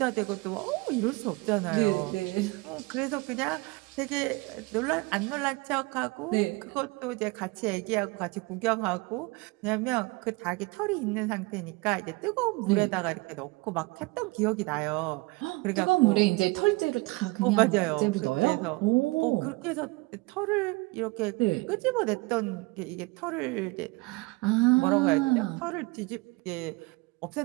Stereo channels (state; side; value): quieter; left; 24.8 dB